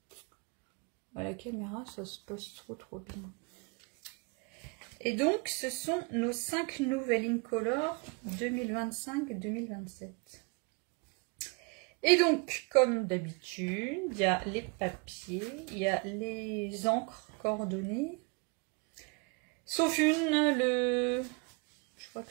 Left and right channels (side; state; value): left; quieter; 30.8 dB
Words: à la caméra, ça se passe trop bien. Et donc, ce sont nos 5 nouvelles Incolor 2025-2027. Et donc, comme d'habitude, il y a les papiers, il y a les encres coordonnées. Sauf je crois